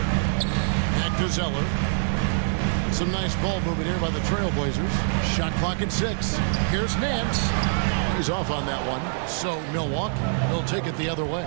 Back to Zeller. Some nice ball movement here by the Trailblazers. Shot clock at 6. Here's Nance. He's off on that one. So Milwaukee will take it the other way.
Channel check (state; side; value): silent; left; digital silence